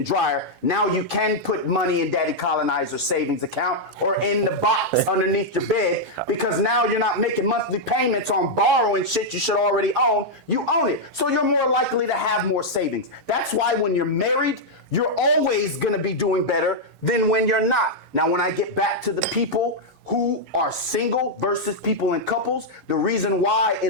dryer. Now you can put money in Daddy Colonizer's savings account or in the box underneath your bed, because now you're not making monthly payments on borrowing shit you should already own. You own it. So you're more likely to have more savings. That's why when you're married, you're always gonna be doing better than when you're not. Now, when I get back to the people who are single versus people in couples, the reason why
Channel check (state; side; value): normal; both; correlation -0.04